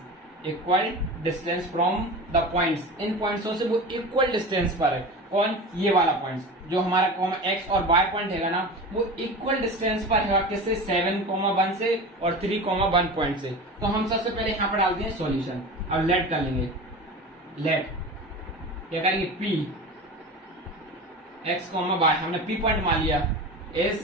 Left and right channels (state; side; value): normal; both; correlation 0.31